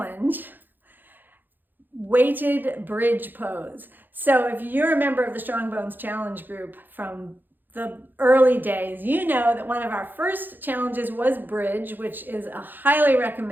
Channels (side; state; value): left; late; 0.090 ms